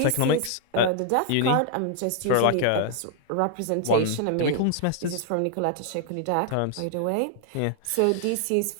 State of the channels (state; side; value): different; both; correlation 0.00